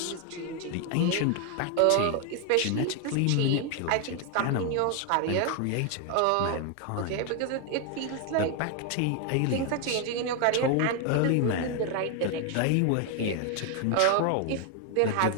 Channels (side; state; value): both; different; correlation 0.01